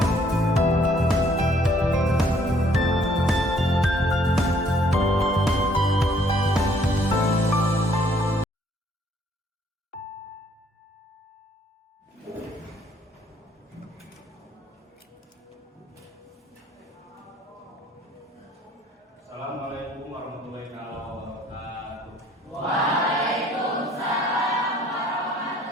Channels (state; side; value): normal; both; correlation 0.63